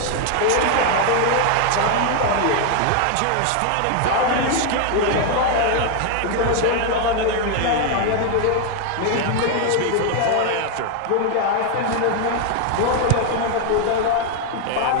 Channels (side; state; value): both; different; correlation 0.00